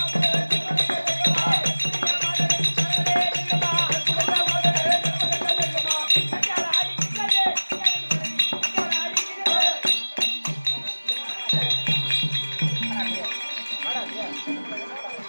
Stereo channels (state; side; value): inverted; both; correlation -1.00